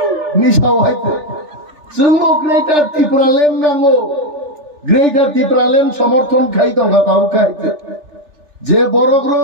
নিশাও আইতে जोंबो ग्रेटार ত্রিপুরা লেন नांगो ग्रेटार ত্রিপুরা লেন समर्थन खाई दंगा ताउ खाइते जे बरक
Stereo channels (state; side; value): late; left; 3.4 ms